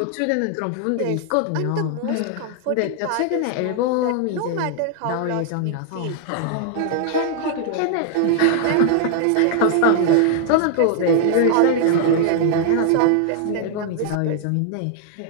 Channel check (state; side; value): different; both; correlation 0.00